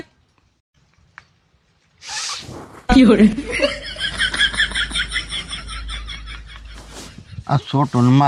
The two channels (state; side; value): identical; both; correlation 1.00